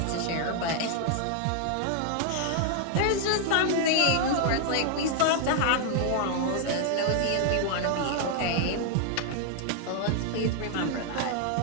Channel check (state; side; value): different; both; correlation 0.00